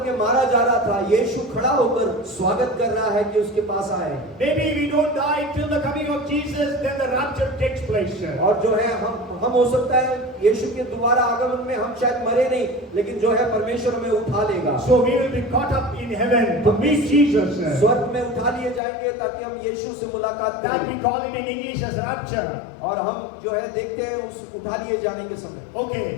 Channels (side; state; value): right; drops out; at 18.8 s